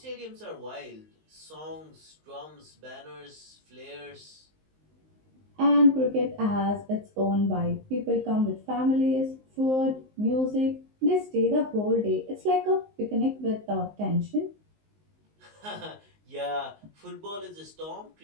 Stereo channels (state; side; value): late; left; 19 ms